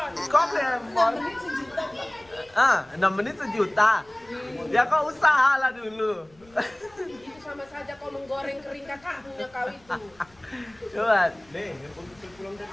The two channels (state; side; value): noise; left; rumble, 30 dB below the sound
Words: Kau beli handphone? 6 menit sejuta. Ya kau usaha lah dulu. Itu sama saja kau menggoreng kering kakaknya kau itu. Coba.